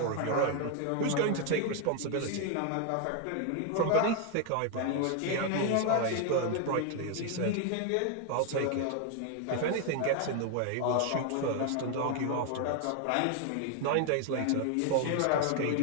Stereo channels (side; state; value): both; different; correlation 0.00